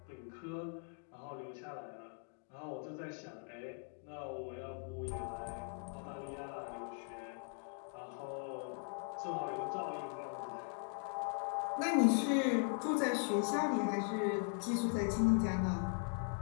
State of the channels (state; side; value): silent; right; 51 dB below the other